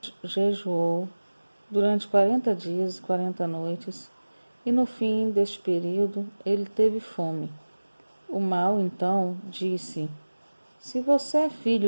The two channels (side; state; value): both; inverted; correlation -1.00